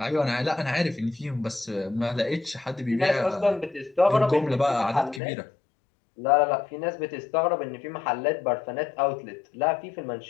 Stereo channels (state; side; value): drops out; right; at 5.2 s